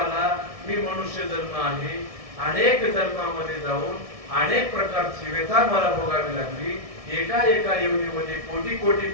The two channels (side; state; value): left; late; 1.7 ms